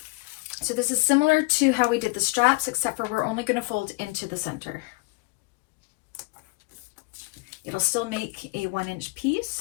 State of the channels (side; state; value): right; quieter; 28.1 dB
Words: So this is similar to how we did the straps, except for we're only going to fold into the center. It'll still make a 1-inch